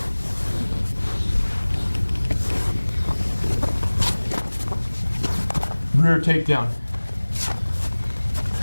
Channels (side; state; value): both; inverted; correlation -1.00